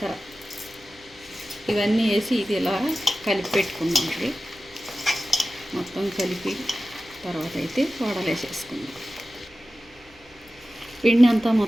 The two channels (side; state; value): both; normal; correlation 0.94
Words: ఇవన్నీ వేసి ఇది ఇలా కలిపి పెట్టుకున్నామండి. మొత్తం కలిపి తర్వాత అయితే వడలేసేసుకున్నాం. పిండి అంతా